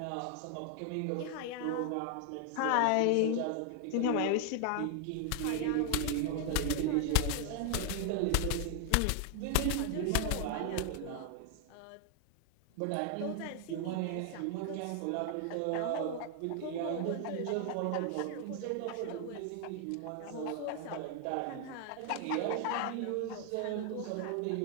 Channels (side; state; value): both; different; correlation 0.00